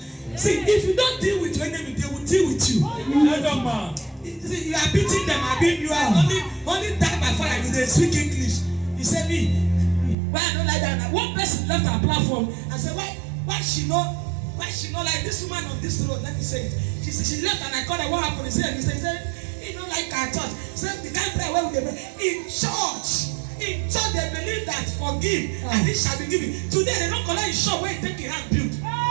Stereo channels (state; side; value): drops out; left; at 10.2 s